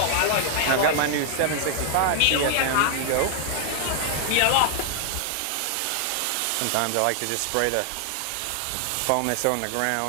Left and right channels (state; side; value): different; both; correlation 0.00